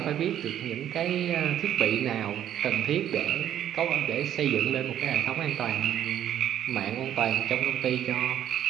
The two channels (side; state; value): left; quieter; 10.8 dB